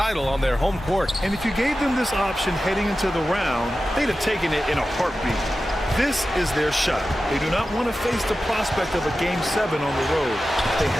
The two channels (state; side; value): normal; both; correlation 0.93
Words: on their home court. And if you gave them this option heading into the round, they'd have taken it in a heartbeat. This is their shot. They do not want to face the prospect of a Game 7 on the road. They